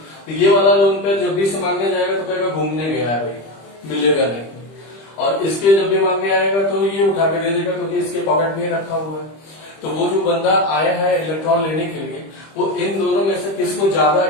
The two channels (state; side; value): late; right; 25 ms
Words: तो ये वाला लोन पेयर जब भी से मांगने जाएगा तो कहेगा घूमने गया है भाई, मिलेगा नहीं। और इसके जब भी मांगने आएगा तो ये उठा के दे देगा क्योंकि इसके पॉकेट में रखा हुआ है। तो वो जो बंदा आया है इलेक्ट्रॉन लेने के लिए, वो इन दोनों में से किसको ज्यादा